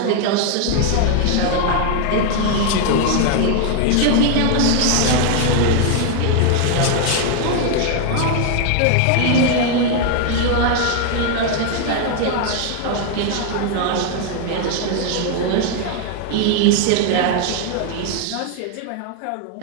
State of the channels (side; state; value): both; different; correlation 0.00